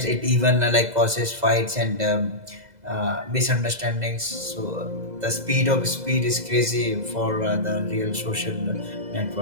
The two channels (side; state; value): left; late; 2.0 ms